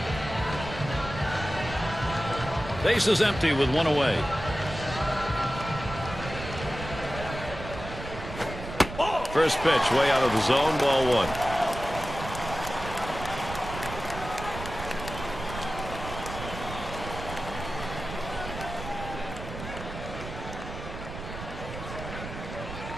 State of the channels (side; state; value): right; noise; rumble, 9 dB below the sound